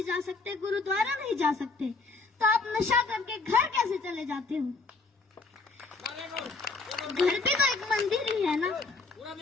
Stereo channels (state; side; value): quieter; right; 3.9 dB